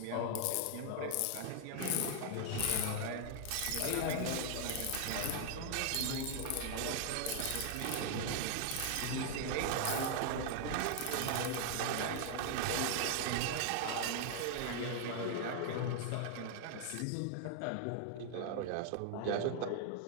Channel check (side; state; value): both; different; correlation 0.00